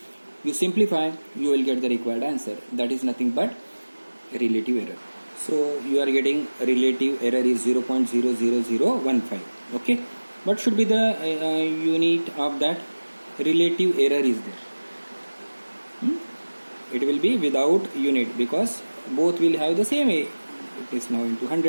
You simplify, you will get the required answer. That is nothing but relative error. So you are getting relative error is 0.00015. Okay. What should be the unit of that? Relative error is there. It will be without unit because both will have the same A. It is now into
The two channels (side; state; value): both; inverted; correlation -1.00